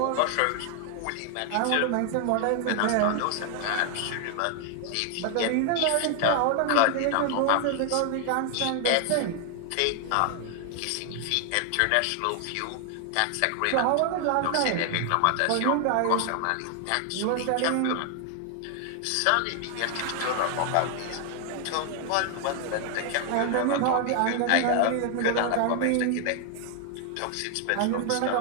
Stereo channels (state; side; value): different; both; correlation 0.00